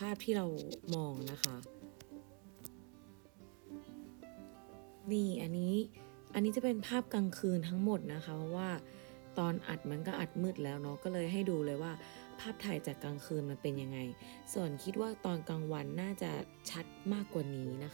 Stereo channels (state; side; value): quieter; left; 38.3 dB